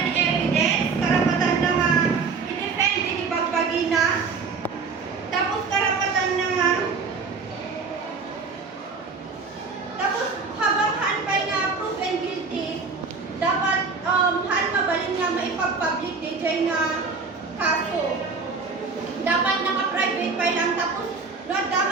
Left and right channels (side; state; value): left; quieter; 4.7 dB